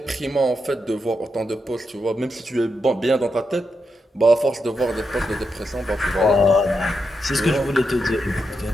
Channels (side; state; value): both; normal; correlation 0.84